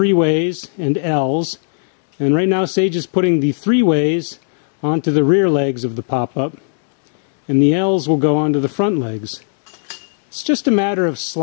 and L's. And right now Sage is putting the 3-ways onto the rear legs of the pop-up, and the L's will go onto the front legs. It's just a matter of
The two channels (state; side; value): silent; right; 68 dB below the other